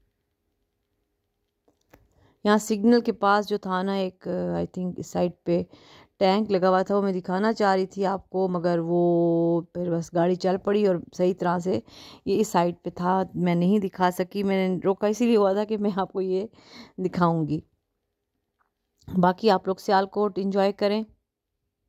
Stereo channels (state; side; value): identical; both; correlation 1.00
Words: यहाँ सिग्नल के पास जो था ना, एक आई थिंक इस साइड पे टैंक लगा हुआ था, वो मैं दिखाना चाह रही थी आपको, मगर वो फिर बस गाड़ी चल पड़ी और सही तरह से ये इस साइड पे था, मैं नहीं दिखा सकी। मैंने रोका इसीलिए हुआ था कि मैं आपको ये दिखाऊंगी। बाकी आप लोग सियालकोट एंजॉय करें।